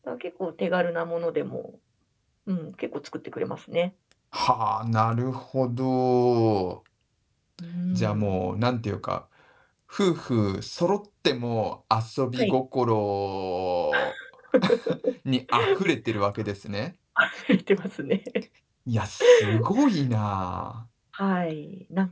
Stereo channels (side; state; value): both; identical; correlation 1.00